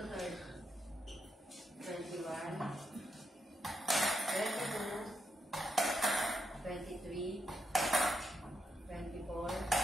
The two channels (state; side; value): normal; both; correlation 0.82